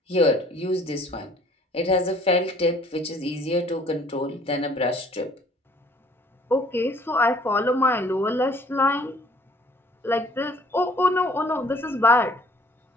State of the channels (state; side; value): normal; both; correlation 0.56